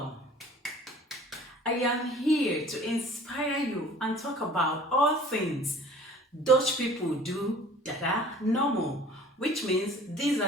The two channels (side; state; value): both; normal; correlation 0.48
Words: I am here to inspire you and talk about all things Dutch people do that are normal, which means these